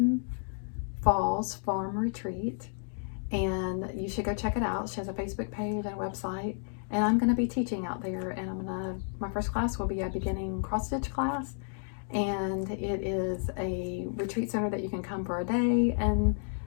Falls Farm Retreat, and you should go check it out. She has a Facebook page and a website. And I'm going to be teaching out there, and my first class will be a beginning cross stitch class, and it is a retreat center that you can come for a day and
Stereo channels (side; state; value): right; silent; 57 dB below the other